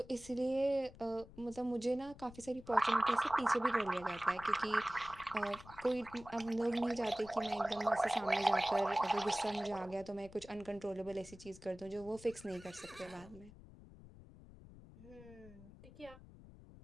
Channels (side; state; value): left; noise; rumble, 19 dB below the sound